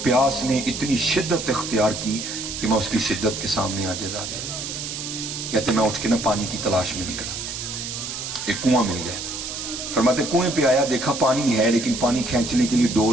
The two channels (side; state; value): right; noise; hiss, 6 dB below the sound